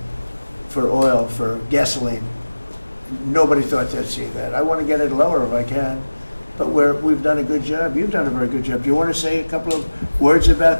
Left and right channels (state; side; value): inverted; both; correlation -1.00